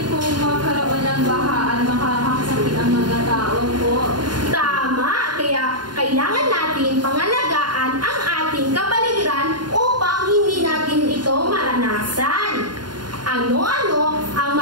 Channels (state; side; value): late; left; 0.71 ms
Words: po magkaroon ng baha at makakasakit ang mga tao po. Tama! Kaya kailangan natin pangalagaan ang ating kapaligiran upang hindi natin ito maranasan. Ano-ano ang